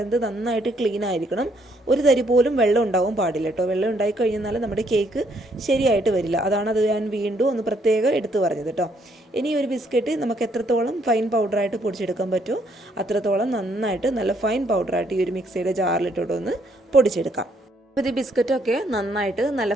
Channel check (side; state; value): both; normal; correlation 0.70